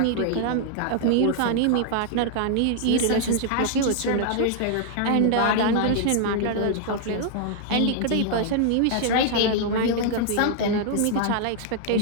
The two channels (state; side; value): different; both; correlation 0.00